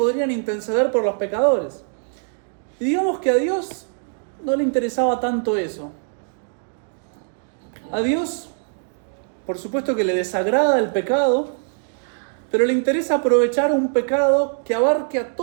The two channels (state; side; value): silent; left; digital silence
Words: interceder por los pecadores. Y digamos que a Dios no le interesaba tanto eso. A Dios, por supuesto que le desagrada el pecado, pero le interesa aprovechar un pecado que abarque a